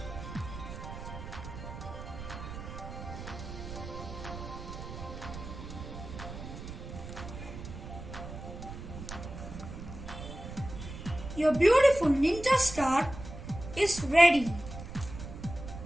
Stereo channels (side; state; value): right; noise; rumble, 10 dB below the sound